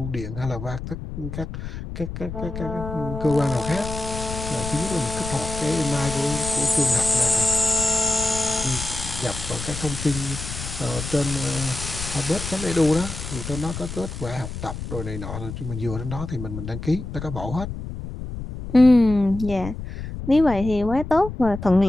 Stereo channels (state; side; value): noise; left; rumble, 8 dB below the sound